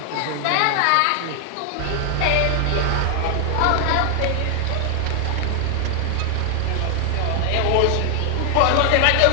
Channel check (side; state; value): both; different; correlation 0.00